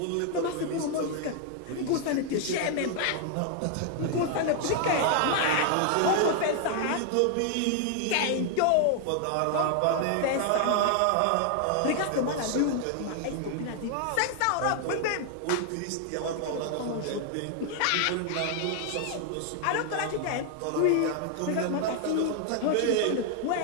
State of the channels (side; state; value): both; different; correlation 0.00